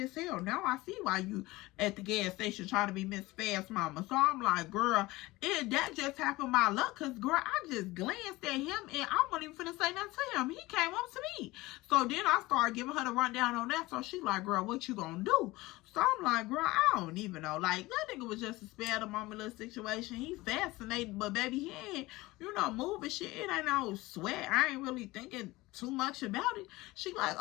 as hell. Now I see why you at the gas station trying to be Miss Fast Mama. So I'm like, girl, that just happened by luck, cause girl, I just glanced at him, and I wasn't even finna say nothing to him. He came up to me. So then I started giving her the rundown on that. So she like, girl, what you gonna do? So I'm like, girl, I don't even know. Like, that nigga was just a spare the moment little situation. He fascinated, but baby, he ain't, moving shit. It ain't no sweat. I ain't really thinking too much about it. She like,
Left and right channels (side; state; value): right; quieter; 20.1 dB